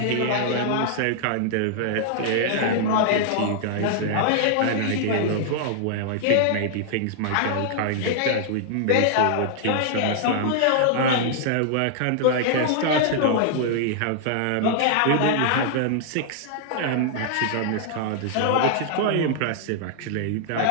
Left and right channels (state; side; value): different; both; correlation -0.01